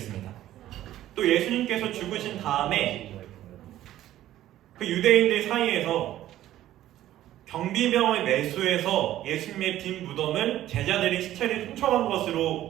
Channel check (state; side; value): quieter; left; 13.4 dB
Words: 또 예수님께서 죽으신 다음에 그 유대인들 사이에서 경비병을 매수해서 예수님의 빈 무덤을 제자들이 시체를 훔쳐간